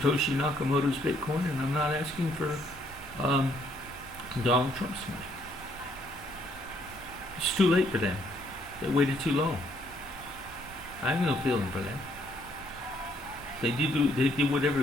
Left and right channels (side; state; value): both; normal; correlation 0.69